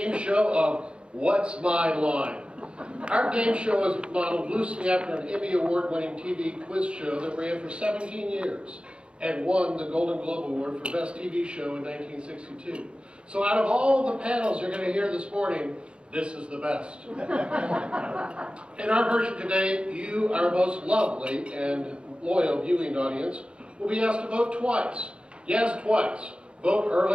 show of What's My Line? Our game show is modeled loosely after an Emmy Award-winning TV quiz show that ran for 17 years and won the Golden Globe Award for Best TV Show in 1962. So out of all the panels you're going to hear this morning, this is the best. In our version today, you, our most lovely and loyal viewing audience, will be asked to vote twice. Yes, twice. Vote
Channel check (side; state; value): left; late; 0.055 ms